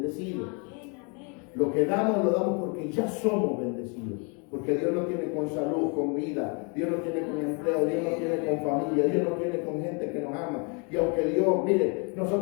Lo que damos, lo damos porque ya somos bendecidos. Porque Dios no tiene con salud, con vida, Dios no tiene con empleo, Dios no tiene con familia, Dios no tiene con gente que nos ama. Y aunque Dios, mire,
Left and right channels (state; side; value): quieter; right; 34.9 dB